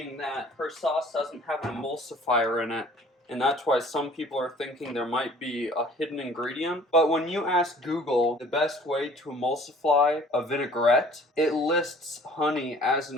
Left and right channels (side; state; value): both; normal; correlation 0.52